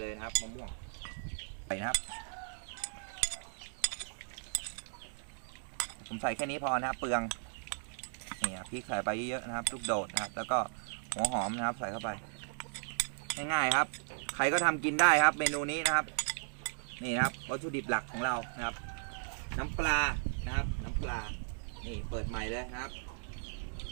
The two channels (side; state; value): left; silent; digital silence